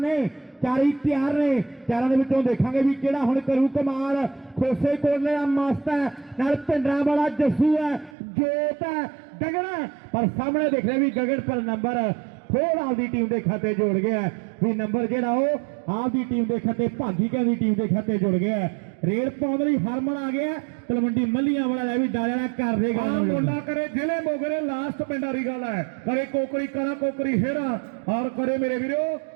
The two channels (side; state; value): left; drops out; at 8.2 s